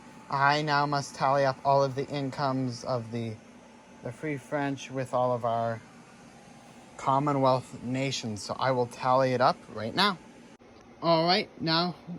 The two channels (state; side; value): identical; both; correlation 1.00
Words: I now must tally up all of the incomes of the Free French with all of our Commonwealth nations. So I will tally it up right now. Alright, now